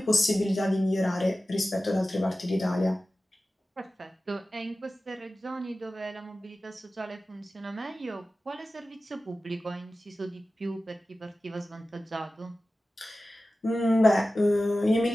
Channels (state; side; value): normal; both; correlation 0.95